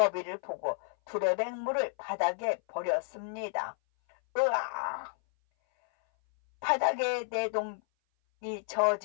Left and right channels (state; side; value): silent; right; 57 dB below the other